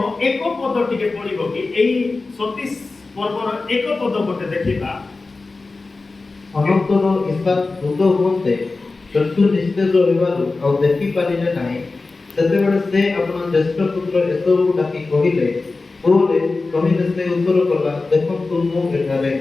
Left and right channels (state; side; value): quieter; right; 3.7 dB